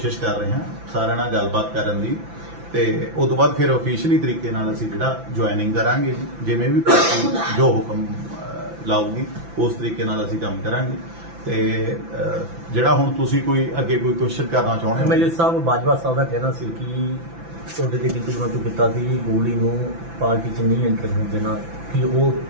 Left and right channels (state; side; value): late; left; 5.9 ms